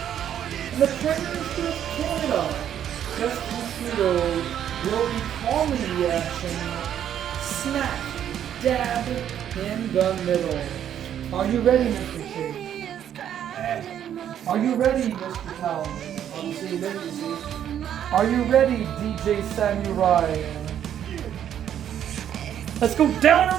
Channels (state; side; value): quieter; left; 10.0 dB